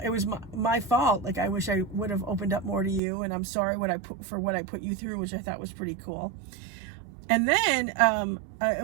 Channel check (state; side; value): drops out; left; at 3.0 s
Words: was my fault. Like, I wish I would have opened up more to you, and I'm sorry for what I put you through, which I thought was pretty cool. And then